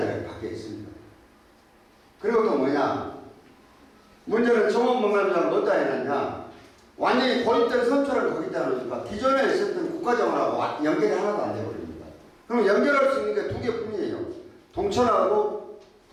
바뀌어 있습니다. 그리고 또 뭐냐. 문제는 정원박람회장을 어디다 해놨냐. 완전히 고립된 선처를 거기다 놓으니까 기존에 있었던 국가정원하고 연결이 하나도 안 돼버립니다. 그럼 연결할 수 있는 게 두 개뿐이에요. 동천하고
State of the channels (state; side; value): identical; both; correlation 1.00